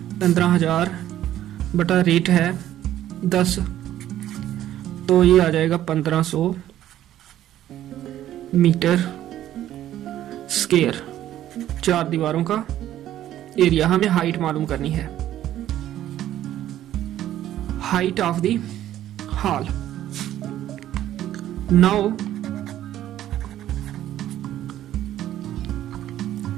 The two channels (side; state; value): left; quieter; 12.5 dB